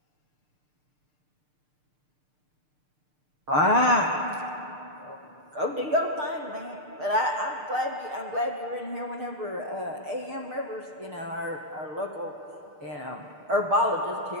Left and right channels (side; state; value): left; late; 6.6 ms